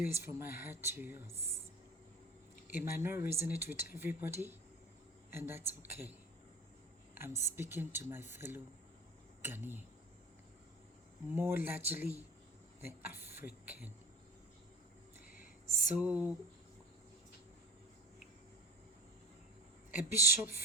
is from my heart to yours. It might not resonate with everybody, and that's okay. I'm speaking to my fellow Ghanaian, more largely the African. So, a bishop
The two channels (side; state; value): both; normal; correlation 0.37